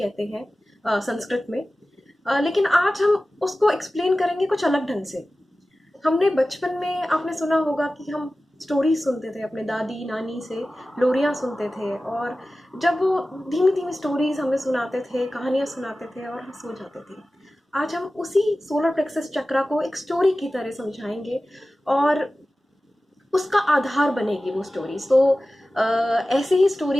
हैं संस्कृत में। लेकिन आज हम उसको एक्सप्लेन करेंगे कुछ अलग ढंग से। हमने बचपन में, आपने सुना होगा कि हम स्टोरी सुनते थे अपने दादी नानी से, लोरियां सुनते थे, और जब वो धीमी धीमी स्टोरीज हमें सुनाते थे, कहानियां सुनाते थे, और हम सो जाते थे। आज हम उसी सोलर प्लेक्सस चक्रा को एक स्टोरी की तरह समझाएंगे, और उसका आधार बनेगी वो स्टोरी। सो ऐसे ही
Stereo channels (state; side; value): normal; both; correlation 0.96